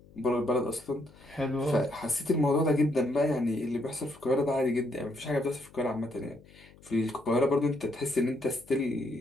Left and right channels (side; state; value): left; noise; hum, 24 dB below the sound